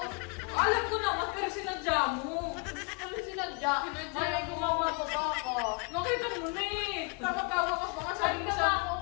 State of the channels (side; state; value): right; quieter; 32.3 dB